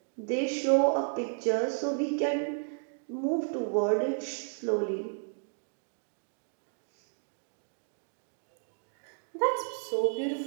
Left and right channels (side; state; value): left; silent; 56 dB below the other